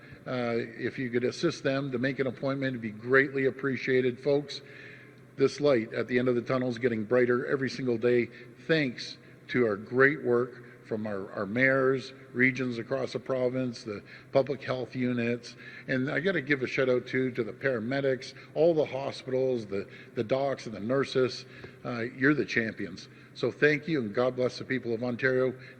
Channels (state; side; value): identical; both; correlation 1.00